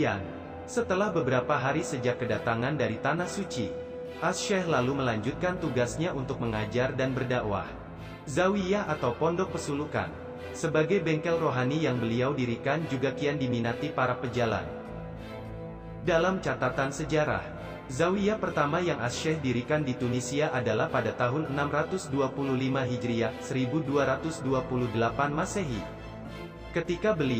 setelah beberapa hari sejak kedatangan dari Tanah Suci, Asy-Syaikh lalu melanjutkan tugasnya untuk mengajar dan berdakwah. Zawiyah atau pondok pesulukan, sebagai bengkel rohani yang beliau dirikan juga kian diminati para pejalan. Dalam catatan sejarah, zawiyah pertama yang Asy-Syaikh dirikan di Tunisia adalah pada tahun 625 Hijriah, 1228 Masehi. Ketika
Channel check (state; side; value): identical; both; correlation 1.00